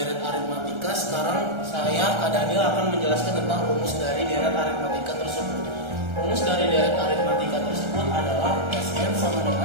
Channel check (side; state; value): left; late; 1.3 ms